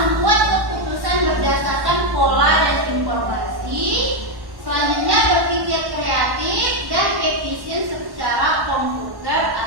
keputusan berdasarkan pola dan informasi. Selanjutnya, berpikir kreatif dan efisien secara komputer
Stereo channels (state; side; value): late; left; 1.1 ms